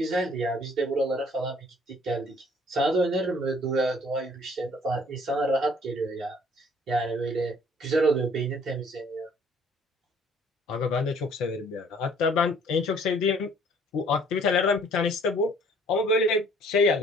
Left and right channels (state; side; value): normal; both; correlation 0.57